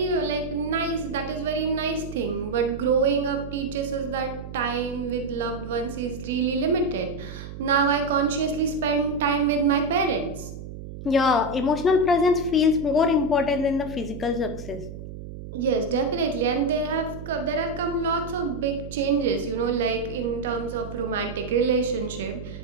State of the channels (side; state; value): right; noise; hum, 11 dB below the sound